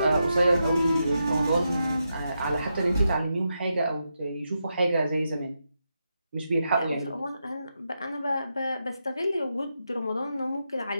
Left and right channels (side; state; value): both; inverted; correlation -0.85